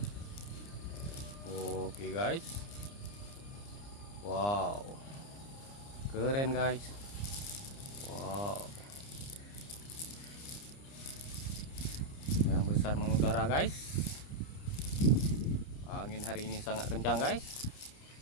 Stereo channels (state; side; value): late; right; 29 ms